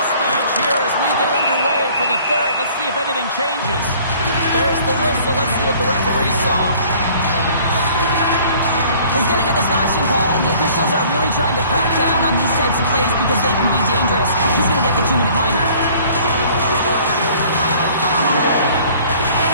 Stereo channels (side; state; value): both; inverted; correlation -0.53